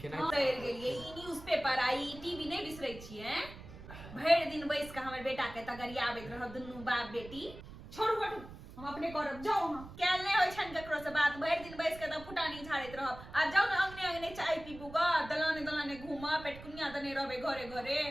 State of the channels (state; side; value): noise; right; rumble, 15 dB below the sound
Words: केना। बिसरि गेलिए ई न्यूज़पेपर आई टीवी नहीं बिसरै छियै। भरि दिन बैस के हमर बेटा के तगरियाबैत रहब दुनू बाप बेटी। छोड़ू हटू हम अपने करब जाओ हां कैल नहीं होय छन ककरो से बात भरि दिन बैस के त फुटानी झाड़ैत रहब। आ जाओ ना अंगने अंगने चाय पीबू ग दलाने दलाने घूमा पेटकुनिया दने रहबे घरे घरे।